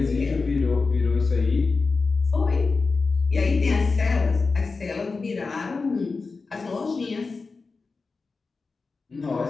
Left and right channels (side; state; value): right; quieter; 4.2 dB